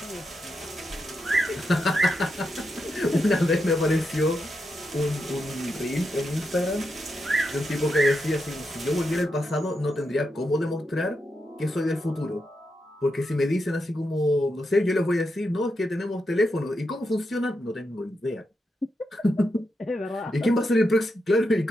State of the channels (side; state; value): both; normal; correlation 0.85